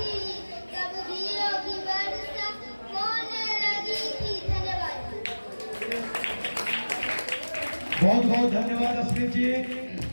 तब घियों की वर्षा होने लगी थी। धन्यवाद। बहुत बहुत धन्यवाद अस्मित जी।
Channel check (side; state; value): both; inverted; correlation -1.00